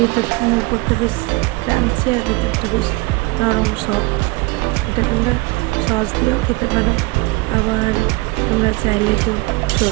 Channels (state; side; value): quieter; left; 23.5 dB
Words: উপরটা বেশ ক্রাঞ্চি আর ভেতরটা বেশ নরম সফট। এটা তোমরা সস দিয়েও খেতে পারো, আবার তোমরা চাইলে কেউ